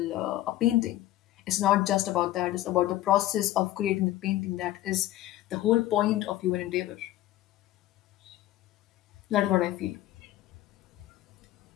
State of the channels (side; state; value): right; quieter; 14.6 dB